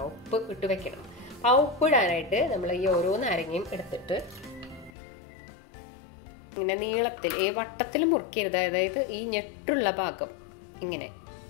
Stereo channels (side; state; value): right; drops out; at 4.9 s